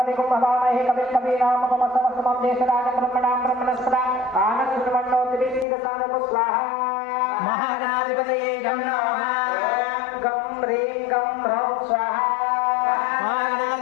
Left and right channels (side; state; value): right; drops out; at 5.7 s